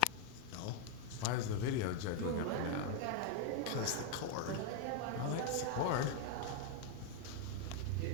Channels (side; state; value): both; different; correlation 0.00